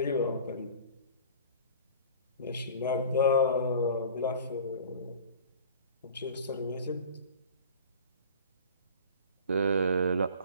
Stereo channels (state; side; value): inverted; both; correlation -0.42